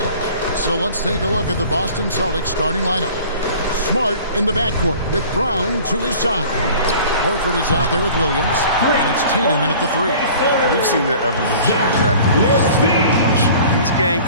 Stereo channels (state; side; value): inverted; both; correlation -0.46